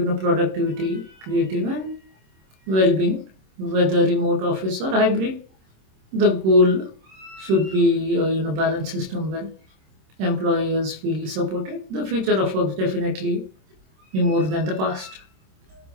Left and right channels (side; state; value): left; late; 26 ms